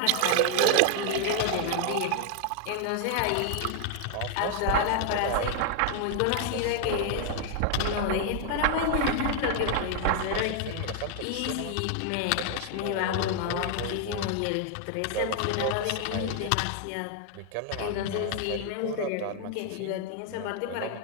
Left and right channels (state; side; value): different; both; correlation 0.00